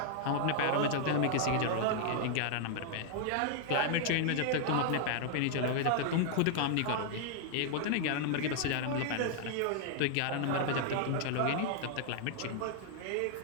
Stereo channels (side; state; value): both; different; correlation 0.00